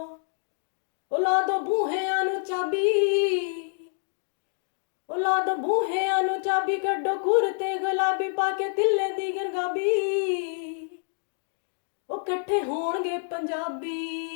ਉਹ ਲਾ ਦੋ ਬੂਹਿਆਂ ਨੂੰ ਚਾਬੀ, ਉਹ ਲਾ ਦੋ ਬੂਹਿਆਂ ਨੂੰ ਚਾਬੀ, ਕੱਢੋ ਘੁਰ ਤੇ ਗੁਲਾਬੀ ਪਾ ਕੇ ਤਿੱਲੇ ਦੀ ਗਰਗਾਬੀ। ਉਹ ਇਕੱਠੇ ਹੋਣਗੇ ਪੰਜਾਬੀ,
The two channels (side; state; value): right; silent; digital silence